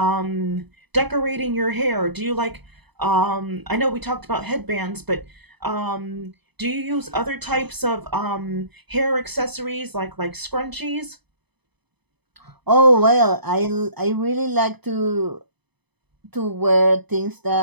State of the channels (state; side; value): late; left; 0.99 ms